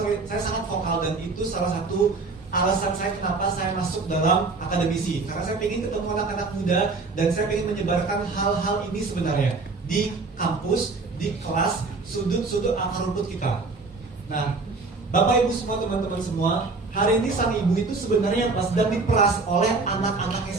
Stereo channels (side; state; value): left; quieter; 3.9 dB